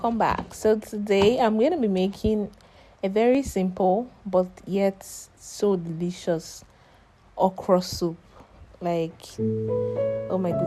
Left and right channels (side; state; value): both; identical; correlation 1.00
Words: back. So today I'm going to be making a very simple but yet so delicious okra soup. Like, oh my